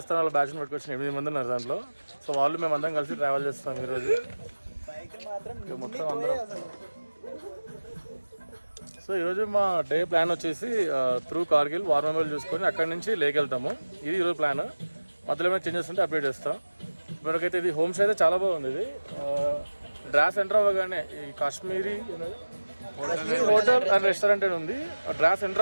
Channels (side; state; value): both; inverted; correlation -1.00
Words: వాళ్ళ బ్యాచ్ని పట్టుకొచ్చిన 8 మంది ఉన్నారు దాంట్లో. సో వాళ్ళు మేము అందరం కలిసి ట్రావెల్ చేస్తాం ఈరోజు మొత్తం అందరం. సో ఈరోజు మా డే ప్లాన్ వచ్చేసి త్రూ కార్గిల్ వార్ మెమోరియల్ చూసుకొని అక్కడి నుంచి లేక్ వెళ్తాము. ఇది ఈరోజు ప్లాన్. మధ్యలో ఏమైనా చేంజెస్ ఉంటే అప్డేట్ చేస్తాం. ఇప్పటికైతే ఇది హోమ్ స్టే అయితే చాలా బాగుంది. ఇది డ్రాస్ ఎంటర్ అవ్వగానే ఈ కాశ్మీరీ హోటల్ అండ్ రెస్టారెంట్ అని ఉంది. డ్రాస్ ఎంటర్